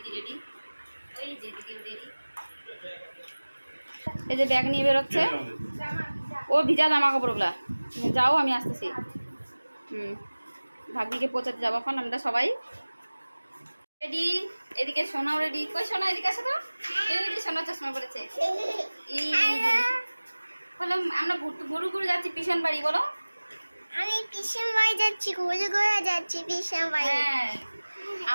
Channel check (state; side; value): inverted; both; correlation -1.00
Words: রেডি, ওই যে দিদিও রেডি। এই যে ব্যাগ নিয়ে বেরোচ্ছে, ও ভিজা জামা কাপড়গুলা। যাও, আমি আসতেছি। ভাগ্নিকে পৌঁছাতে যাবো এখন আমরা সবাই রেডি। এদিকে সোনাও রেডি। কই সোনা, এদিকে আসো তো। এই যে সোনা চশমা পড়েছে। এই বললাম আমরা গরু গরু যাচ্ছি পিছন বাড়ি। বলো, আমি পিছন বাড়ি যাচ্ছি, ঘুরে ঘুরে যাচ্ছি পিছন বাড়ি। হ্যাঁ